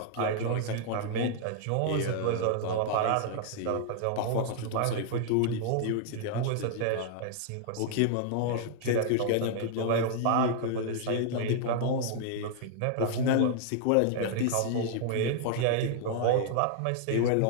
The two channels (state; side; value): different; both; correlation -0.01